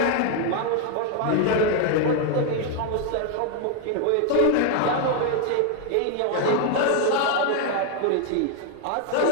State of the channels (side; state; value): both; different; correlation 0.01